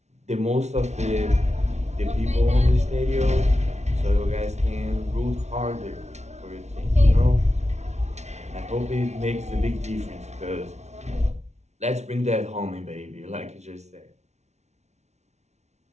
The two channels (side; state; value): left; late; 0.32 ms